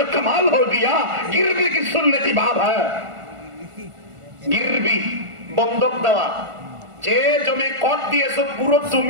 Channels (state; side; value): late; left; 1.4 ms